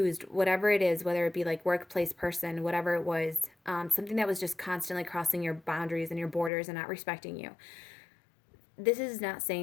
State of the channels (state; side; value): drops out; right; at 6.5 s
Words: whatever it is, whether it be like workplace person, whatever it was, something that was just constantly crossing your boundaries and your borders and not respecting you. This is not